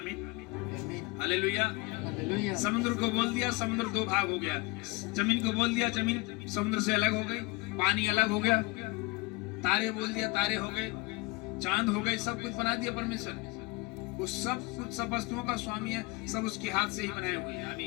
हालेलुया। समुद्र को बोल दिया, समुद्र दो भाग हो गया। जमीन को बोल दिया, जमीन समुद्र से अलग हो गई, पानी अलग हो गया। तारे बोल दिया, तारे हो गए, चांद हो गए, सब कुछ बना दिया परमेश्वर। वो सब कुछ, सब वस्तुओं का स्वामी है, सब उसके हाथ से ही बनाए हुए हैं।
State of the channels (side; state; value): right; quieter; 23.9 dB